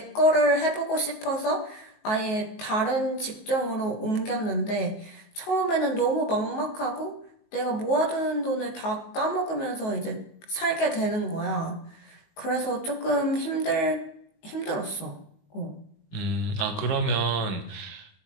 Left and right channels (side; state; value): right; late; 19 ms